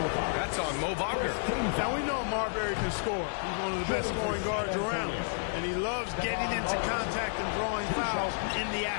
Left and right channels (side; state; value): right; silent; digital silence